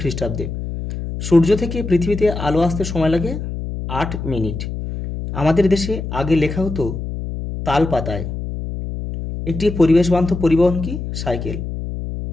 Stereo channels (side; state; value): left; noise; hum, 6 dB below the sound